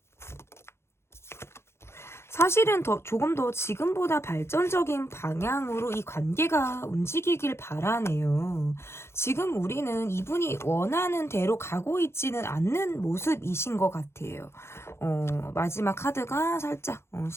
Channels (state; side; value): late; right; 0.12 ms